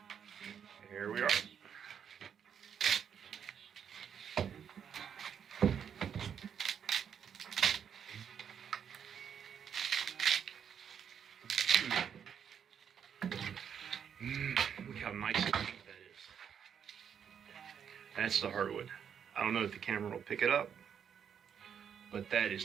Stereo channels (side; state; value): left; quieter; 8.0 dB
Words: here we are. Look how nice and pink that is. That's the hardwood. I don't know if the camera will pick it up, but that is